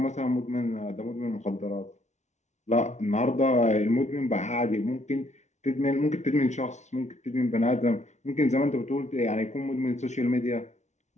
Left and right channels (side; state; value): right; late; 0.33 ms